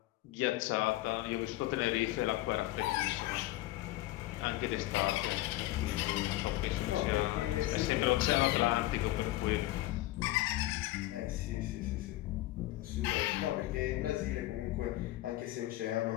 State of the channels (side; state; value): right; quieter; 16.8 dB